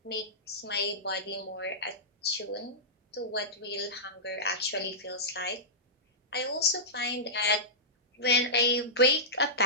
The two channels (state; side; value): normal; both; correlation -0.16